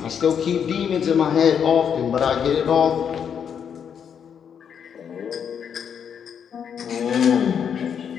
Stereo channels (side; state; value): right; quieter; 7.8 dB